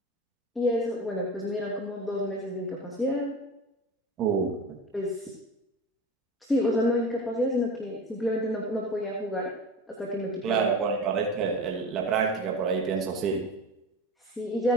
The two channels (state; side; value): normal; both; correlation 0.31